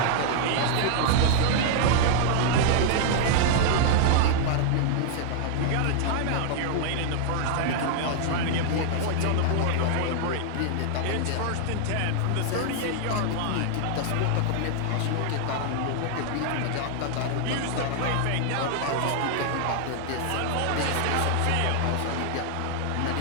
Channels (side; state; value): both; different; correlation 0.00